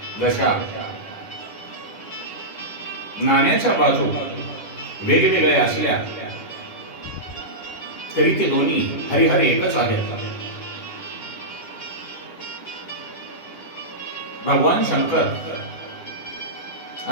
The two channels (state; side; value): late; right; 9.9 ms